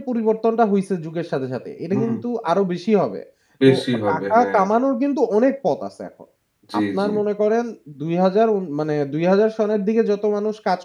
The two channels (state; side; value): identical; both; correlation 1.00